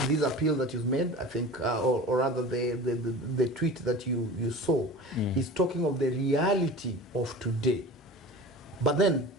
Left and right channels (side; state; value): both; normal; correlation 0.36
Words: this appeal that you've made, I think, or rather the tweet that you saw, is talking of the reality of today. But then